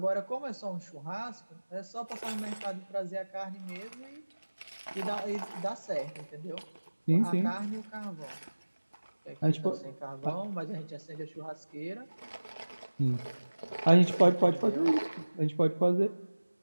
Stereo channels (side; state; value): both; inverted; correlation -1.00